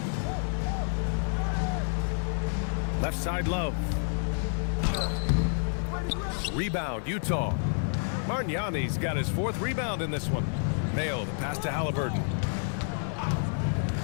Left side Love. Rebound, Utah. Margnani's got his 4th rebound in this one. Mayo, the pass to Halliburton.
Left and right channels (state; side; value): silent; right; 58 dB below the other